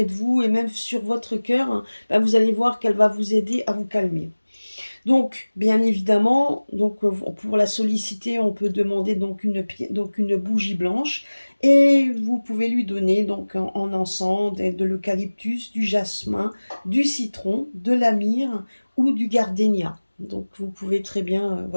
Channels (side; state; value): both; inverted; correlation -1.00